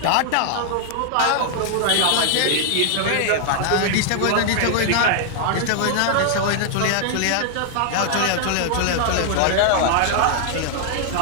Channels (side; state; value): both; different; correlation 0.00